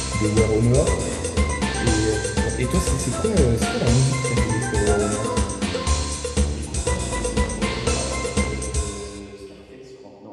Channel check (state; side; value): identical; both; correlation 1.00